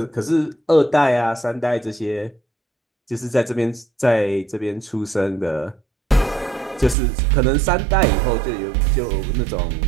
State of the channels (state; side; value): drops out; left; at 7.0 s